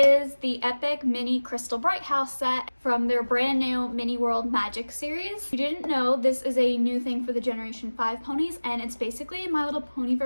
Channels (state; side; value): inverted; both; correlation -1.00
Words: the Epic Mini Crystal Brighthouse set from their brand new Mini World Magic series. If you didn't know, this is a new thing for the Generation 5 ponies, and it's basically a My Little Pony